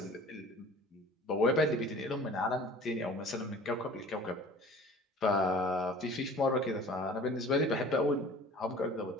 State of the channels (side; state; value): both; normal; correlation 0.45